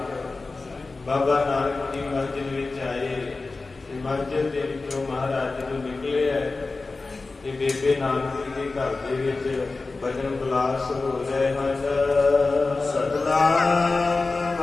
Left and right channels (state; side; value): quieter; right; 3.7 dB